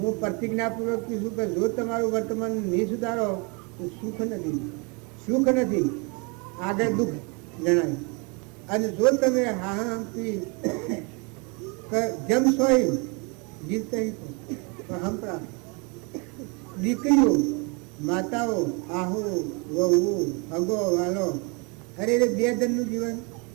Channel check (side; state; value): left; quieter; 31.9 dB